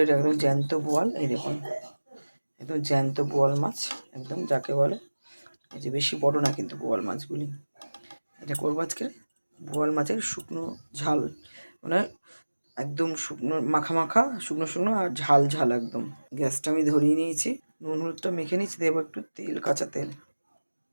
একদম জ্যান্ত বোয়াল। এই দেখুন একদম জ্যান্ত বোয়াল মাছ, একদম যাকে বলে, এই যে বেশি বড় না কিন্তু বোয়াল মাছগুলি। এটা করবো আজকে বোয়াল মাছের শুকনো ঝাল, মানে একদম শুকনো মাখা মাখা, শুকনো শুকনো আর ঝাল ঝাল একদম। গ্যাসটা আমি ধরিয়ে নিয়েছি, নুন হলুদটা মেখে নিয়েছি, দেবো একটু তেল, কাঁচা তেল,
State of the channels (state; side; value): inverted; both; correlation -1.00